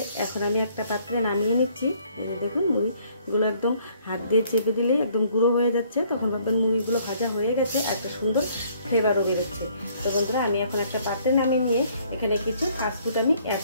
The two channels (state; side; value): inverted; both; correlation -0.62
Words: এখন আমি একটা পাত্রে নামিয়ে নিচ্ছি। দেখুন মুড়িগুলো একদম হাত দিয়ে চেপে দিলেই একদম গুঁড়ো হয়ে যাচ্ছে, তখন ভাববেন মুড়িগুলো ভাজা হয়ে গেছে, একটা সুন্দর ফ্লেভারও বেরোচ্ছে। তো বন্ধুরা আমি এখন একটা পাত্রে নামিয়ে নিয়ে এখানে কিছু ফাস্টফুড আমি অ্যাড